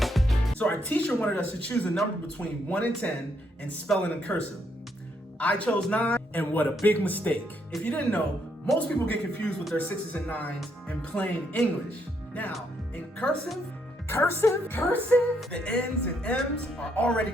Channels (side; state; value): both; normal; correlation 0.74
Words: So our teacher wanted us to choose a number between 1 and 10 and spell it in cursive. I chose 9, and what a big mistake. If you didn't know, most people get confused with their 6s and 9s in plain English. Now, in cursive, the N's and M's are already